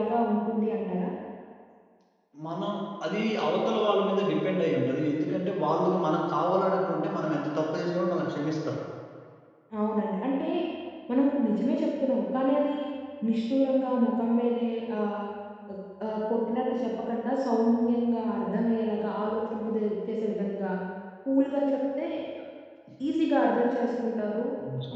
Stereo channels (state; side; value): identical; both; correlation 1.00